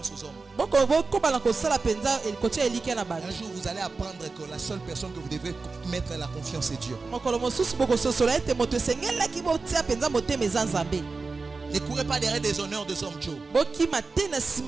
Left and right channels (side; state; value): left; quieter; 4.1 dB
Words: aux hommes. Un jour vous allez apprendre que la seule personne que vous devez mettre la confiance est Dieu. Ne courez pas derrière des honneurs des hommes, Joe.